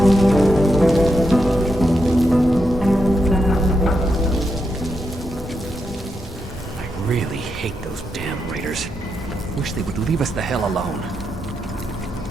I really hate those damn raiders. Wish they would leave us the hell alone.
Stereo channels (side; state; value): both; normal; correlation 0.84